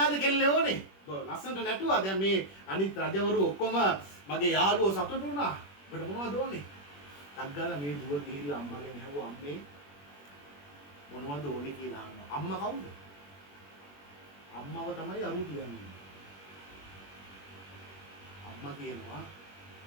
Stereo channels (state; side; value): late; right; 21 ms